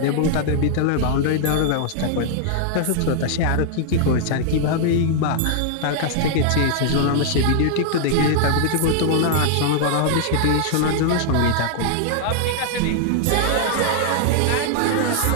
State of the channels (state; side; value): different; both; correlation -0.01